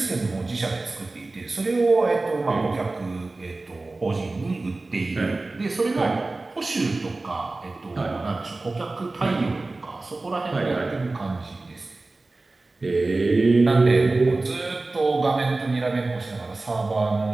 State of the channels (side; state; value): left; quieter; 3.2 dB